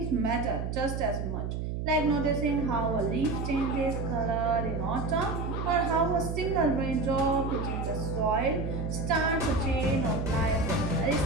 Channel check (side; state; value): right; noise; hum, 3 dB below the sound